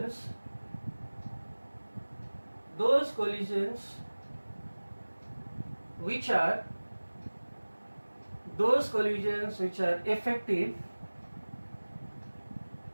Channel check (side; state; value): both; inverted; correlation -1.00